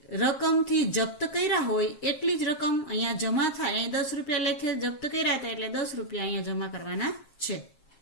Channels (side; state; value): right; late; 7.5 ms